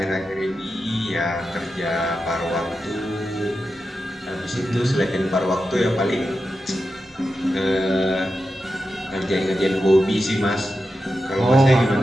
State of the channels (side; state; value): both; normal; correlation 0.90